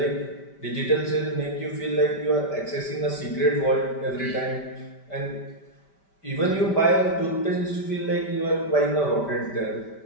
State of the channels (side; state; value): right; late; 5.1 ms